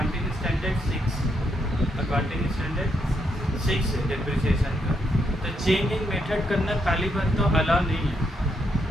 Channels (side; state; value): both; normal; correlation 0.77